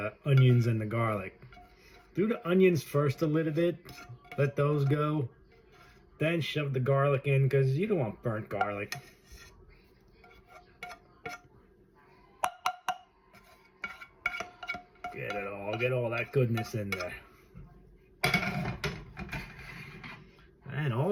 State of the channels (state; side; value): identical; both; correlation 1.00